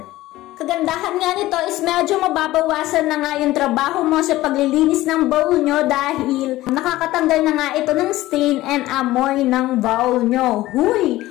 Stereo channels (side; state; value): right; quieter; 16.7 dB